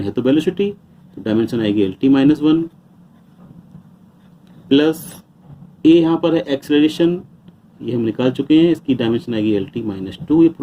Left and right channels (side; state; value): both; identical; correlation 1.00